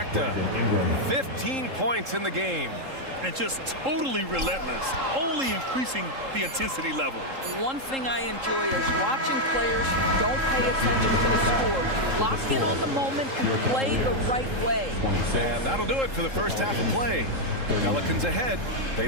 15 points in the game. And just totally relentless, only increasing the intensity level. One thing I enjoy is watching players who don't pay attention to the score. You lock in on the moment and play the right way. And that'll do it for the first half of play. Pelicans ahead. They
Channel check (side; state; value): left; late; 3.7 ms